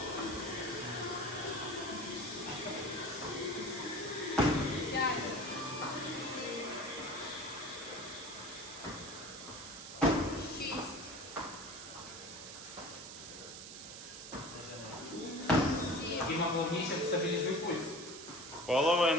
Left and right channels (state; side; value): noise; right; hiss, 11 dB below the sound